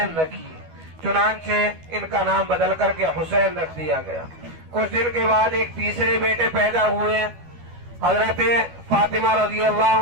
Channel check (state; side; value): late; left; 12 ms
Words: رکھیے۔ چنانچہ ان کا نام بدل کر کے حسین رکھ دیا گیا۔ کچھ دن کے بعد ایک تیسرے بیٹے پیدا ہوئے حضرت فاطمہ رضی